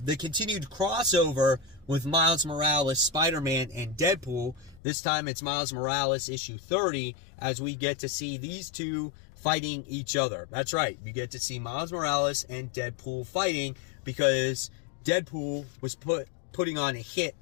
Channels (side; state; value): right; drops out; at 4.8 s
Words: the continued crossover with Miles Morales, Spider-Man, and Deadpool. This time it's Miles Morales issue 30, as we get to see these two fighting each other. That's right, you get to see Miles Morales and Deadpool fighting because Deadpool was putting on a hit